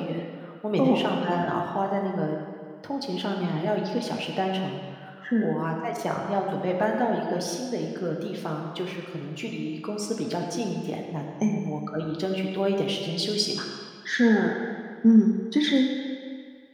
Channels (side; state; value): both; identical; correlation 1.00